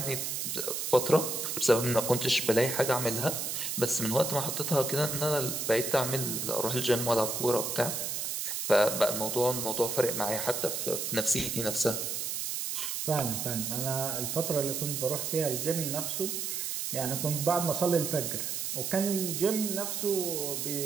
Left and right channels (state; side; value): noise; right; hiss, 2 dB below the sound